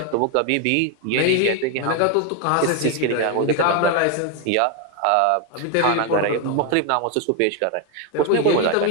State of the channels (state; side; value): different; both; correlation 0.01